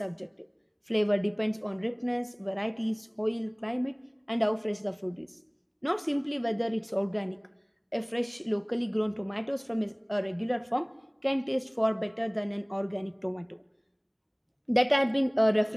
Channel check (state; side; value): identical; both; correlation 1.00